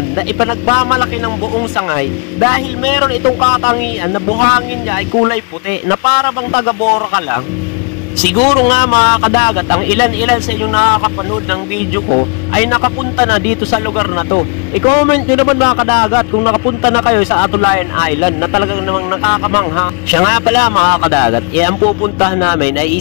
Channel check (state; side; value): quieter; right; 35.4 dB